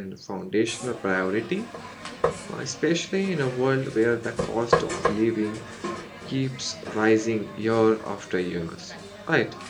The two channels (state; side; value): identical; both; correlation 1.00